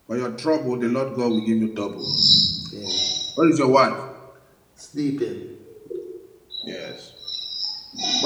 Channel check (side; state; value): both; identical; correlation 1.00